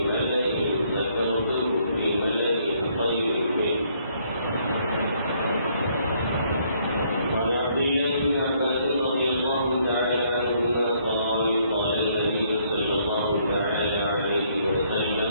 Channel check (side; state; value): both; inverted; correlation -0.68